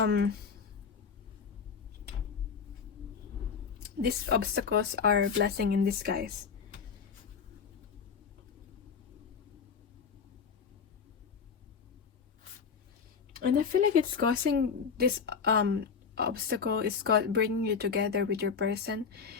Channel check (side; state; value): right; quieter; 6.0 dB